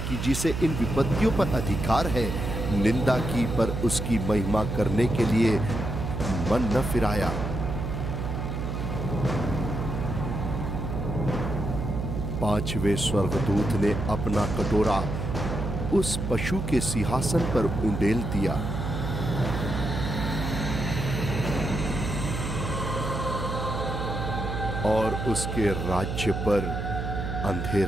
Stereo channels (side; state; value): right; noise; hum, 3 dB below the sound